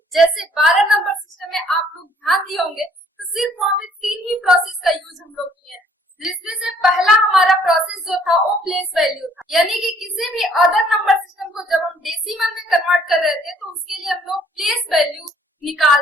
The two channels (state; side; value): normal; both; correlation 0.61